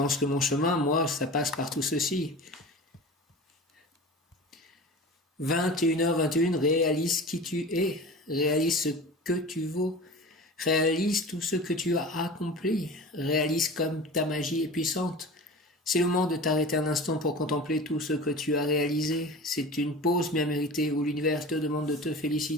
que mon chemin, moi, ça passe par tout ceci. 21h21, réalise qui tu es, réalise ce que tu vaux. Réalise tout ce que tu as accompli. Réalise comme ta magie est puissante. C'est le moment de t'arrêter un instant pour contempler tout ce que tu as réalisé. C'est une pause bien méritée où l'univers te demande de te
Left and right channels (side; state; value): both; normal; correlation 0.35